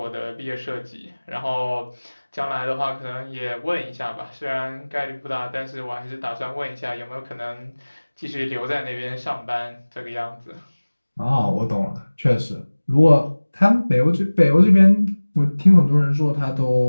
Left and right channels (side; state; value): both; inverted; correlation -1.00